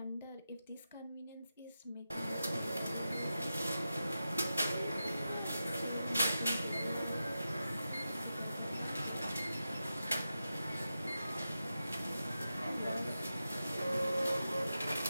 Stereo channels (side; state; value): both; inverted; correlation -0.91